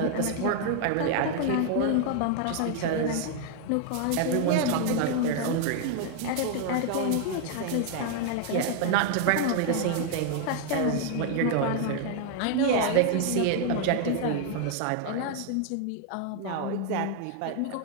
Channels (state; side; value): different; both; correlation 0.00